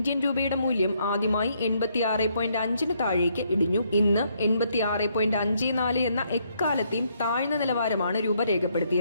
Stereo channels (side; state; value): both; inverted; correlation -0.72